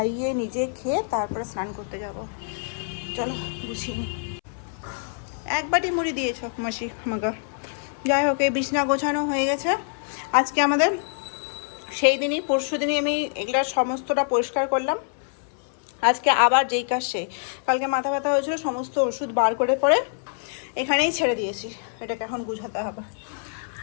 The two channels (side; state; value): right; silent; 61 dB below the other